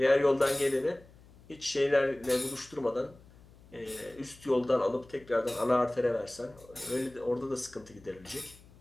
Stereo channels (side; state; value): left; noise; hum, 24 dB below the sound